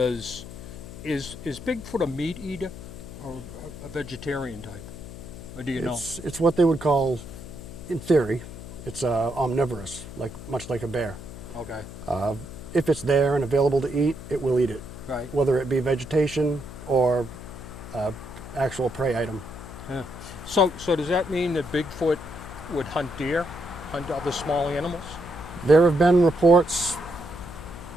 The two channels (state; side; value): noise; left; hum, 13 dB below the sound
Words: is Bigfoot a meat eater or a vegetarian type? Or do you know? It's what they would call, in theory, it's omnivorous, much like a bear. Okay. If it's there and available to eat, it will eat it. Right. Whether it be vegetation or actual prey item. Yeah. So does that mean that Bigfoot would hunt deer, hunt other small animals? There have been reports